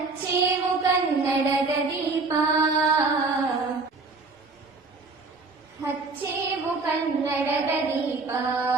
ಕನ್ನಡದ ದೀಪ, ಹಚ್ಚೇವು ಕನ್ನಡದ ದೀಪ,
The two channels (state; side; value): quieter; left; 3.9 dB